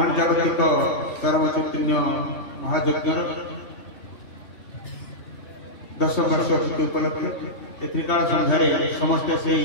जागतिक सर्व चैतन्य महायज्ञ 10 वर्ष उपलक्ष्य त्रिकाल संध्यारे समस्ते से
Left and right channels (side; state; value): right; late; 3.2 ms